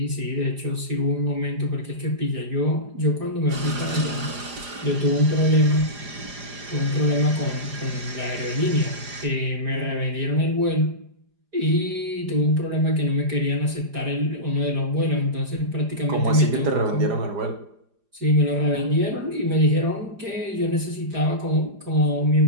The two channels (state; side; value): late; left; 4.9 ms